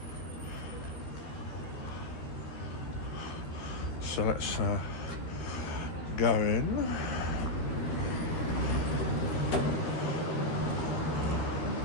So let's go in.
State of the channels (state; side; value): late; right; 13 ms